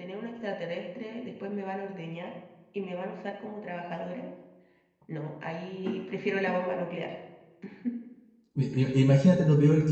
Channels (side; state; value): both; identical; correlation 1.00